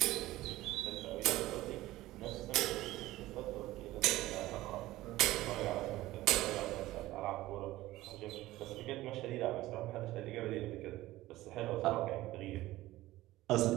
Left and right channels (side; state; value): left; quieter; 16.9 dB